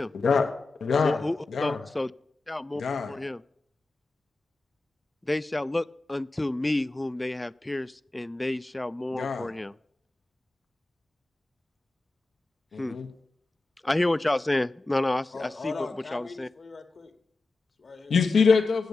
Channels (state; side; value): quieter; right; 3.3 dB